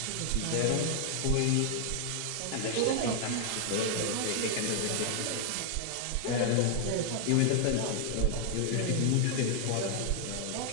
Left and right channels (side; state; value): both; different; correlation 0.00